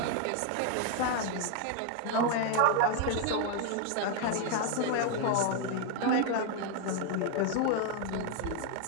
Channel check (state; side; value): different; both; correlation 0.00